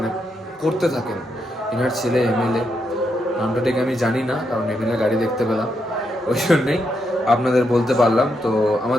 করতে থাকেন। এনার ছেলে এমএলএ, নামটা ঠিক আমি জানি না, কারণ এমএলএ গাড়ি দেখতে পেলাম, ওই জন্যই আপনাদের বলতে পারলাম। তো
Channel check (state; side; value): normal; both; correlation 0.81